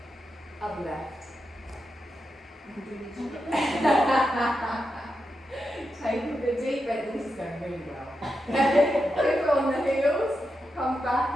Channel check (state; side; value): normal; both; correlation 0.87